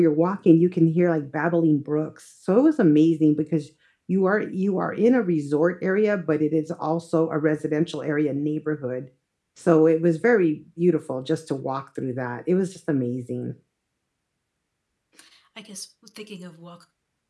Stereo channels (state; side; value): identical; both; correlation 1.00